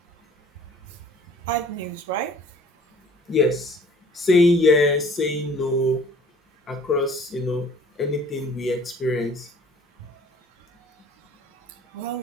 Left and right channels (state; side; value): normal; both; correlation 0.51